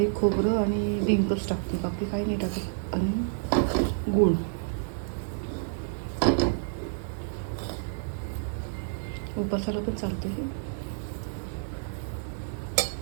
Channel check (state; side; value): silent; left; digital silence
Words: खोबरं आणि डिंकच टाकते, बाकी काही नाही टाकत. आणि गूळ. उपासाला पण चालते हे.